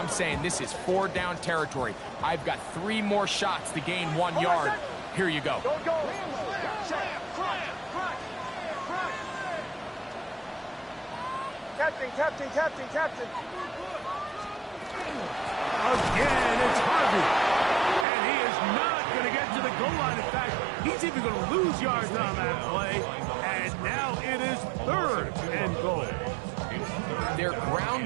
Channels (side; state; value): left; drops out; at 18.1 s